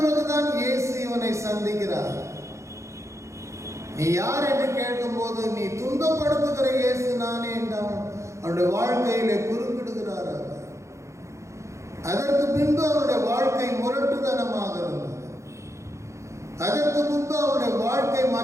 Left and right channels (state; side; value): late; left; 0.14 ms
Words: இயேசு இவனை சந்திக்கிறார். நீ யார் என்று கேட்கும் போது, நீ துன்பப்படுத்துகிற இயேசு நானே என்று அவனுடைய வாழ்க்கையிலே குறுக்கிடுகிறார். அதற்கு பின்பு அவனுடைய வாழ்க்கை முரட்டுத்தனமாக இருந்தது. அதற்கு முன்பு அவனுடைய வாழ்க்கை